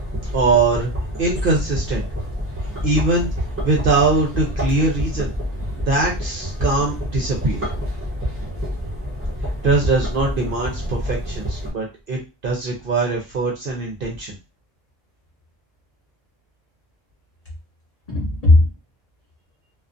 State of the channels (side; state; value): both; normal; correlation 0.32